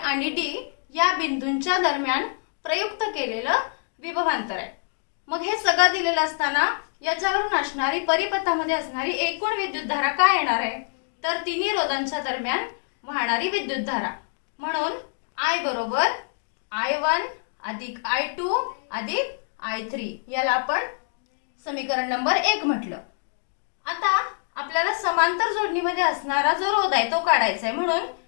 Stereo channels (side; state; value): right; silent; 61 dB below the other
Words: D या बिंदूंच्या दरम्यान प्रयुक्त केलेलं विभवांतर आहे. मग हे सगळं दिलेलं असताना याच्यावरून असणारी परिपथामध्ये असणारी एकूण विद्युतधारा काय येणार आहे तर तिन्ही रोधांच्या दरम्यान वाहणारी विद्युतधारा म्हणून I बरोबर I1 अधिक I2 अधिक I3 याला आपण समीकरण नंबर 1 म्हटलं. आता आपल्याला समांतर जोडणीमध्ये असणारा जो रोध आहे तो काढायचा आहे. म्हणून